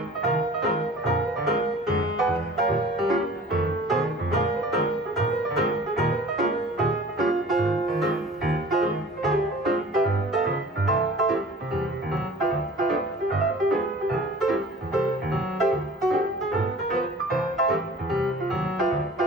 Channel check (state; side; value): normal; both; correlation 0.46